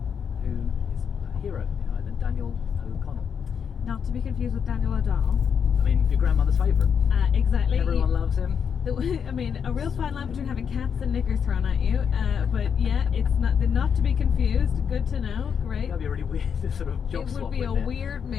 who is a hero in Ireland, Daniel O'Connell. Not to be confused with Daniel O'Donnell. I mean, your grandmother's favourite. Exactly. Everyone loves him. I mean, a real fine line between having cats and knickers thrown at you. But yeah, it's not to be confused. Good to know. Great. That'd be a really weird sort of job It swap. would be a wouldn't it? weird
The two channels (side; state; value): right; quieter; 7.1 dB